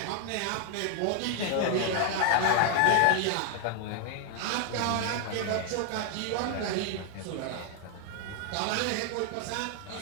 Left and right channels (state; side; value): different; both; correlation 0.01